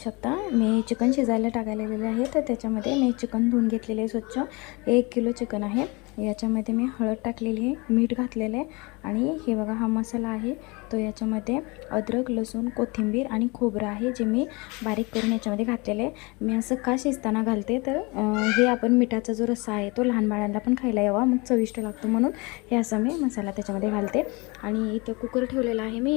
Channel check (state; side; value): quieter; right; 27.0 dB